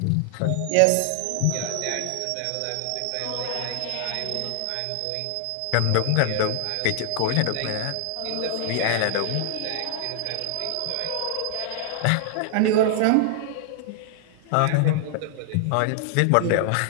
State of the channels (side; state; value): both; different; correlation 0.00